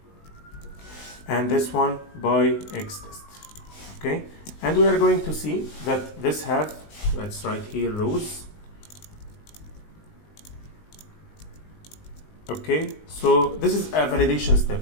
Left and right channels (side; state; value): right; late; 19 ms